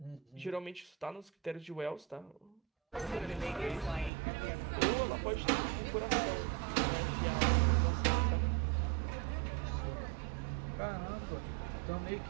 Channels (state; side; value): drops out; left; at 4.1 s